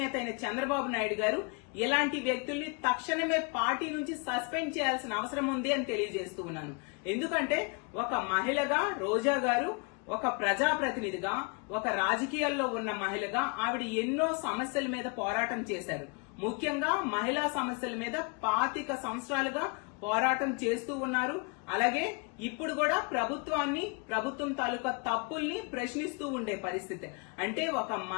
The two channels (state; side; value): quieter; right; 32.8 dB